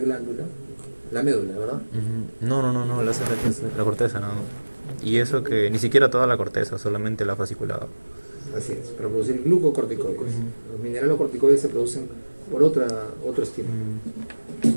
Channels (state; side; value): inverted; both; correlation -1.00